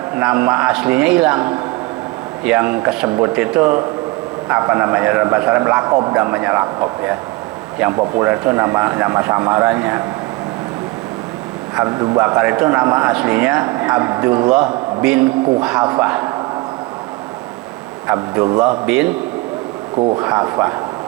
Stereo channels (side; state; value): left; quieter; 23.3 dB